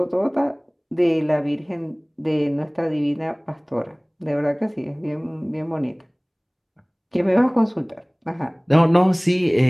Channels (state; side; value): identical; both; correlation 1.00